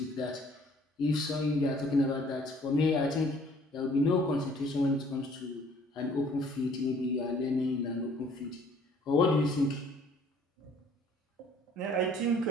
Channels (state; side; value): normal; both; correlation 0.57